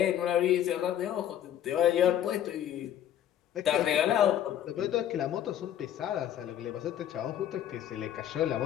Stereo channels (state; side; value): quieter; right; 10.8 dB